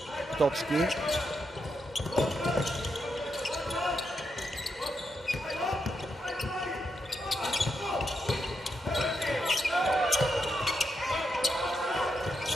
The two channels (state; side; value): normal; both; correlation 0.83